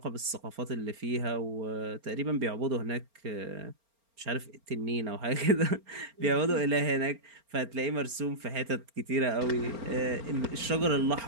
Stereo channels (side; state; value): left; late; 4.4 ms